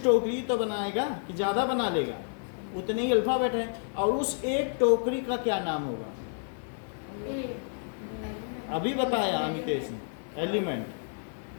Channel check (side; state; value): right; silent; digital silence